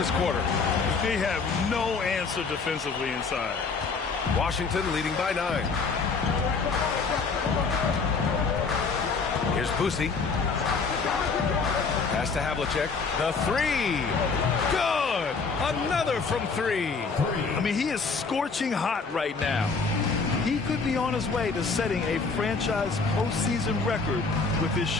quarter. They have no answer defensively inside. Washington leading by 9. Here's Boosie. Pass to Havlicek. The 3. Good! Another from 3. I mean, he is scorching hot right now. He could be on his way to setting a franchise postseason record with his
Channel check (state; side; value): quieter; right; 4.7 dB